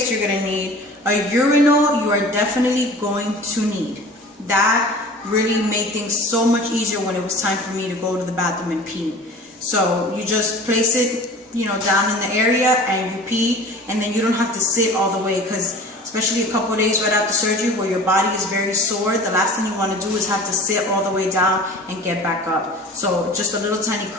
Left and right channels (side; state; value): both; normal; correlation 0.41